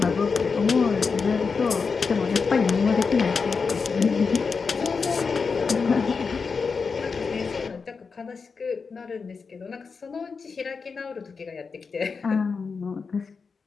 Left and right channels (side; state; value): right; quieter; 5.1 dB